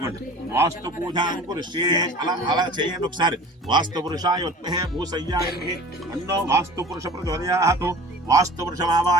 వాస్తు పూజాంకురిష్యే. అలా చేయండి ఒకసారి. వాస్తు పురుషాయ ఉత్మహే భూసయ్యాయ అన్నో వాస్తు పురుష ప్రచోదయాతు. వాస్తు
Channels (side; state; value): both; normal; correlation 0.42